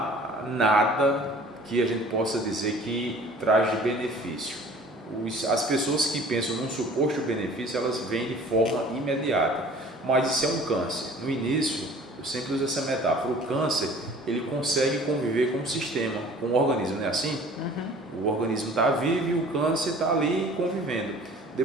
nada que a gente possa dizer que traz de benefício. As pessoas que pensam num suposto benefício, elas vêm de forma imediata. Mas isso é um câncer. No início, eu sempre uso essa metáfora. O câncer, ele consegue conviver com o sistema, com o organismo, não é assim? O organismo está vivo e o câncer está ali convivendo.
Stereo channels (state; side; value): normal; both; correlation 0.49